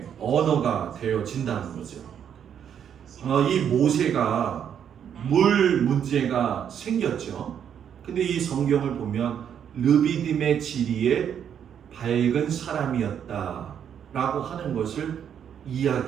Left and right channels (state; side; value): quieter; left; 8.6 dB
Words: 언어가 되어진다는 거죠. 이 모세가 물 문제가 생겼죠. 근데 이 성경을 보면 르비딤의 지리에 밝은 사람이었다라고 하는 것을